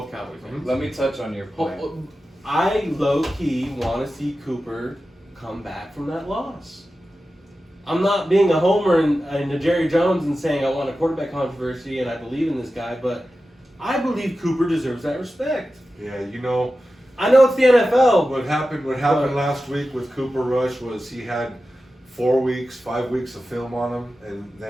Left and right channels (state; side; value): normal; both; correlation 0.93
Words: Cowboy fans. Let me touch on your point. I low-key want to see Cooper come back from that loss. I'm not being a homer and a Jerry Jones and saying I want a quarterback controversy and I believe in this guy, but I believe Cooper deserves that respect. Yeah, you know, I know it's the NFL. what happened But- last week with Cooper Rush was he had 5 weeks of film on him, and